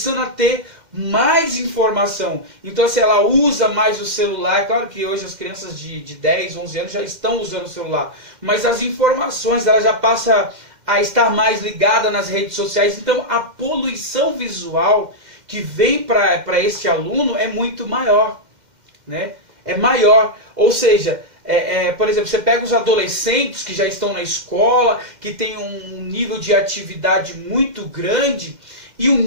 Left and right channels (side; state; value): left; late; 2.1 ms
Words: a ter mais informação. Então, se ela usa mais o celular, claro que hoje as crianças de 10, 11 anos já estão usando o celular, mas as informações, ela já passa a estar mais ligada nas redes sociais. Então, a poluição visual que vem para esse aluno é muito maior, né? É maior, ou seja, por exemplo, você pega os adolescentes que já estão na escola, que tem um nível de atividade muito grande e um